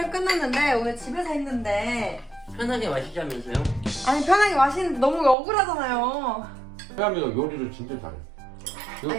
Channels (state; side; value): drops out; left; at 5.4 s